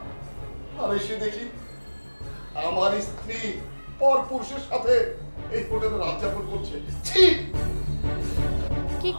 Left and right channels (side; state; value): both; inverted; correlation -1.00